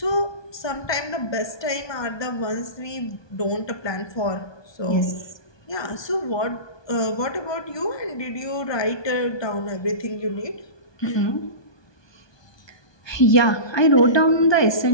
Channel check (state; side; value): late; right; 1.2 ms